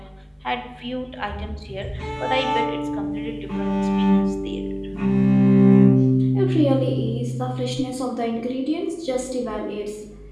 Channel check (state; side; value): identical; both; correlation 1.00